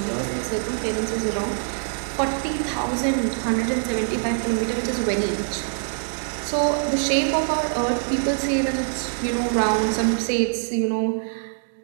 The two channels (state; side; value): silent; left; digital silence